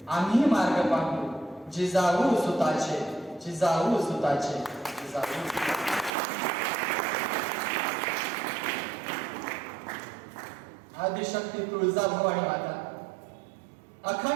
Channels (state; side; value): drops out; left; at 6.2 s